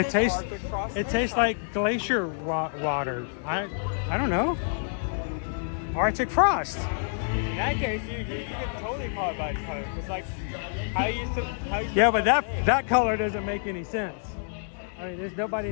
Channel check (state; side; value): silent; right; digital silence